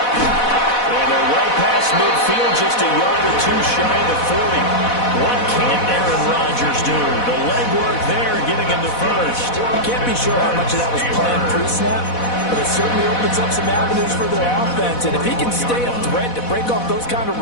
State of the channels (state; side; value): late; right; 4.1 ms